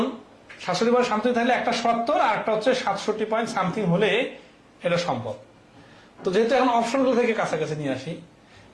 67 পয়েন্ট সামথিং থাকলে একটা 70 আর একটা হচ্ছে 67 পয়েন্ট সামথিং হলে এটা সম্ভব। তো যেহেতু এখন অপশনগুলো থেকে কাছাকাছি নিয়ে আসি,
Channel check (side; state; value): both; identical; correlation 1.00